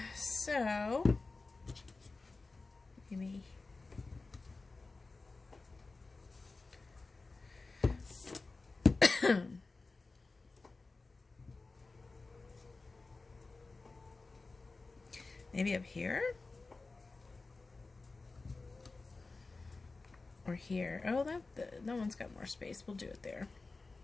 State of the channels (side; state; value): right; quieter; 3.7 dB